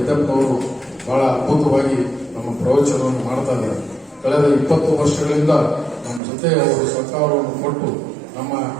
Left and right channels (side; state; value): left; drops out; at 6.2 s